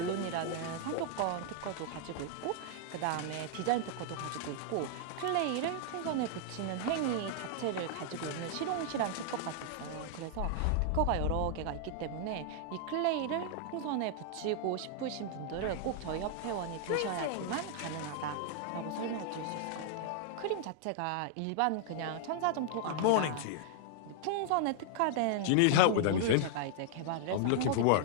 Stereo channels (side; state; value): both; different; correlation -0.01